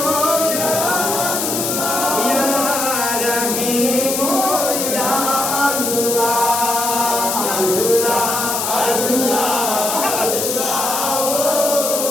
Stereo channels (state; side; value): noise; left; hiss, 1 dB below the sound